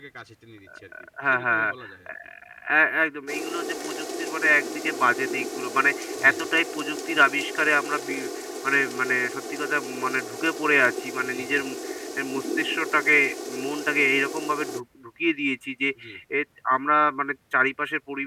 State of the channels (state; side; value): identical; both; correlation 1.00